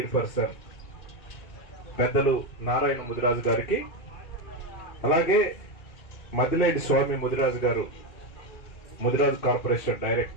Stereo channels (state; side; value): late; right; 2.6 ms